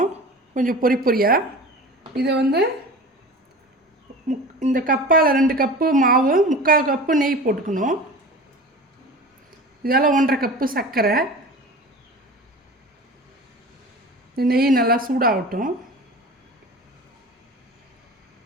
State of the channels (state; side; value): normal; both; correlation 0.36